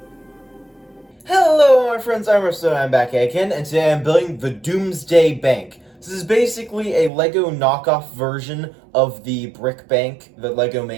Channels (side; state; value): left; drops out; at 7.1 s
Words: Hello, my friends, I'm Marstoy, I'm back again, and today I'm building the Doomsday Bank. This is basically a Lego knockoff version of the brick bank that Lego